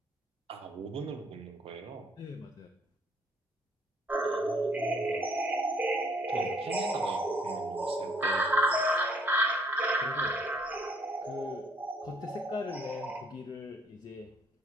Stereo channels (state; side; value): normal; both; correlation 0.64